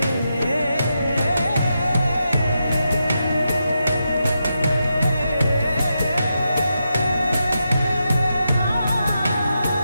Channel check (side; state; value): both; inverted; correlation -0.86